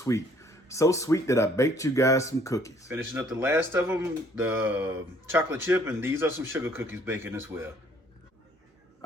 So sweet that I baked you guys some cookies. Finishing up the last of them, the chocolate chip, and these are some sugar cookies baking as well.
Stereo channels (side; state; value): both; normal; correlation 0.61